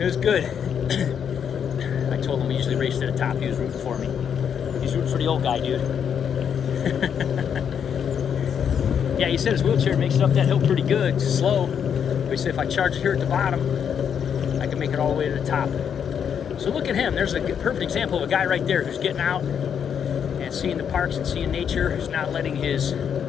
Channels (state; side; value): quieter; right; 7.9 dB